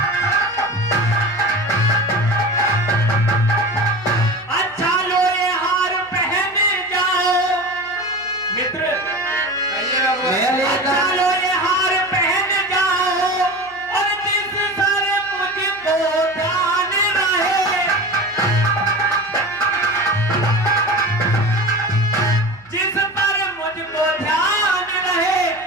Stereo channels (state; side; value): noise; right; hum, 28 dB below the sound